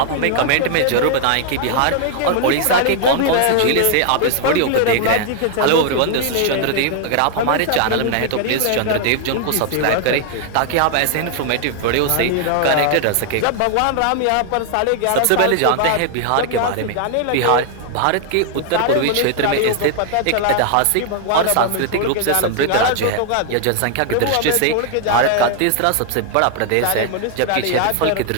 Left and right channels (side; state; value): both; different; correlation 0.00